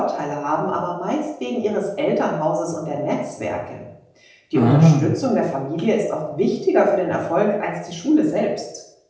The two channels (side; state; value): both; identical; correlation 1.00